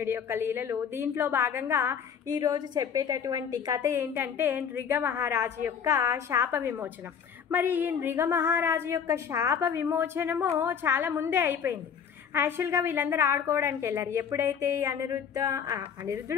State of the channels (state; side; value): quieter; right; 7.4 dB